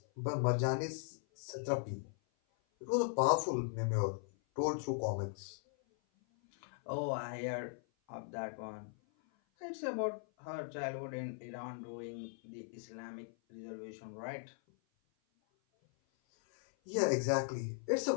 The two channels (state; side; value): silent; right; 52 dB below the other